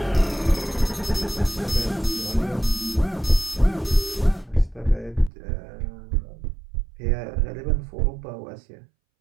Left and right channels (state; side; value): drops out; left; at 5.3 s